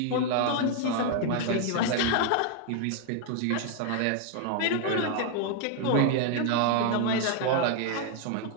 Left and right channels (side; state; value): both; different; correlation 0.00